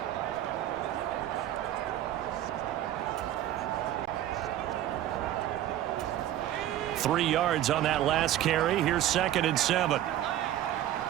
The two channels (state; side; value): quieter; left; 12.5 dB